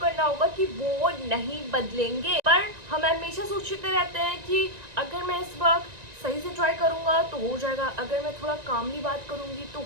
होगा कि वो नहीं बदलेंगे। पर हम हमेशा सोचते रहते हैं कि अगर मैं इस वक्त सही से ट्राई करूंगा तो हो जाएगा, अगर मैं थोड़ा कामली बात करूंगी तो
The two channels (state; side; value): late; left; 1.9 ms